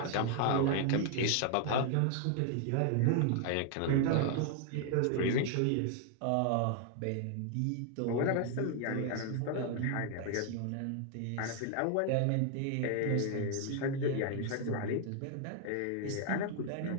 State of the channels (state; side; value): different; both; correlation 0.00